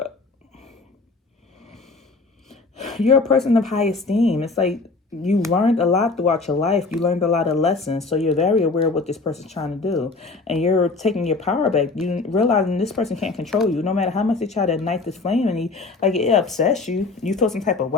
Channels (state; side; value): quieter; right; 3.8 dB